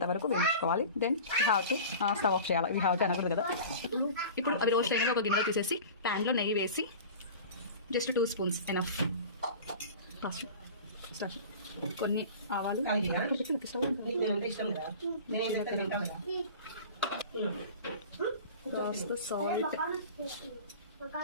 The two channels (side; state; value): both; inverted; correlation -0.37